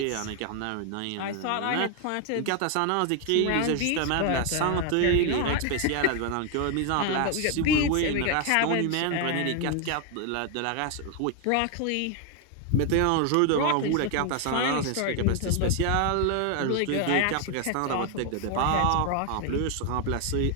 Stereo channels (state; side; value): different; both; correlation 0.01